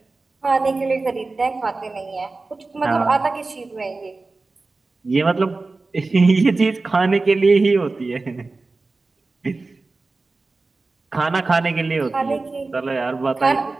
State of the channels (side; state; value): left; quieter; 3.6 dB